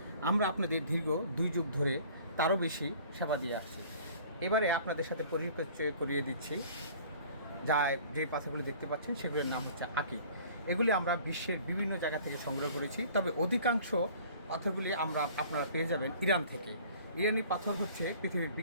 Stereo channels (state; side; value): inverted; both; correlation -0.50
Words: আমরা আপনাদের দীর্ঘ 2 যুগ ধরে তারও বেশি সেবা দিয়ে আসছি। এবারে আপনাদের সাথে পরিচয় করিয়ে দিচ্ছি। যে পাথরগুলো দেখতে পাচ্ছেন সেগুলোর নাম হচ্ছে আকি। এগুলি আমরা বিশ্বের বিভিন্ন জায়গা থেকে সংগ্রহ করেছি, তবে অধিকাংশ পাথরগুলি আপনারা পেয়ে যাবেন ইরান থেকে। ইরানি পাথর হচ্ছে পৃথিবীর